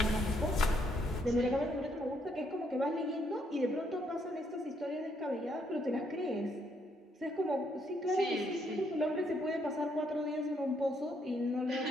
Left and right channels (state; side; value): normal; both; correlation 0.72